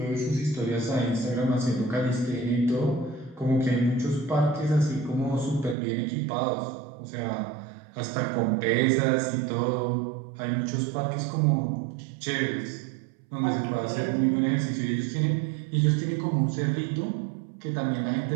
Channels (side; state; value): left; drops out; at 5.8 s